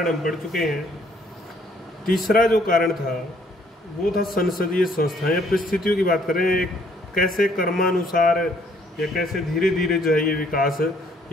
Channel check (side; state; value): both; normal; correlation 0.64